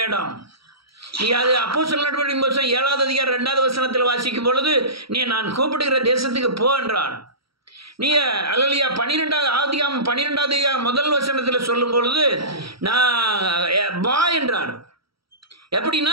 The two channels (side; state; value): left; late; 0.75 ms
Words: இடம். நீ அது அப்போஸ்தலர் நடவடிக்கைகளின் புத்தகம் 7வது அதிகாரம் 2வது வசனத்தில் வாசிக்கும் பொழுது, நீ நான் கூப்பிடுகிற தேசத்துக்கு போ என்றார். நீ அல்லேலூயா 12வது அதிகாரம் 12வது அதிகாரம் 1 வசனத்தில் சொல்லும் பொழுது நான் வா என்றார்.